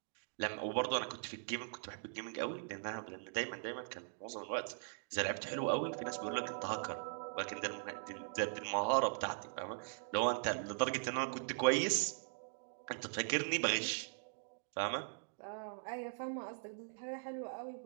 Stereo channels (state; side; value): silent; left; digital silence